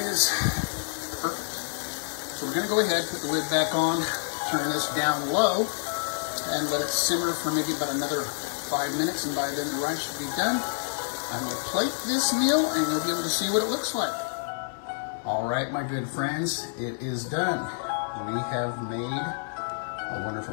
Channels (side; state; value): right; silent; 59 dB below the other